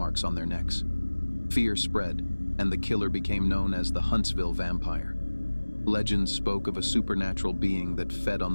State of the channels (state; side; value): inverted; both; correlation -1.00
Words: on their necks. Fear spread, and the killer became known as the Huntsville Vampire. Legends spoke of a supernatural being that fed on